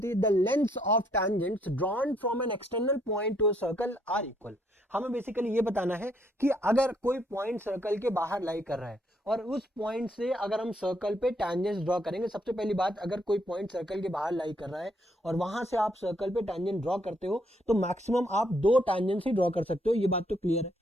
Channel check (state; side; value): normal; both; correlation 0.71